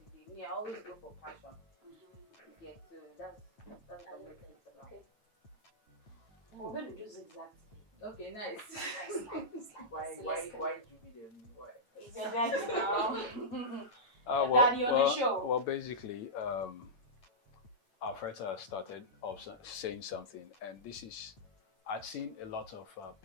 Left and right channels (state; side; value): late; right; 9.0 ms